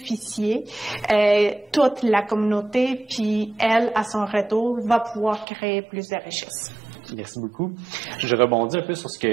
toute la communauté, puis elle, à son retour, va pouvoir créer plus de richesses. Merci beaucoup. Je rebondis un peu sur ce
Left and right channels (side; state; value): left; drops out; at 5.5 s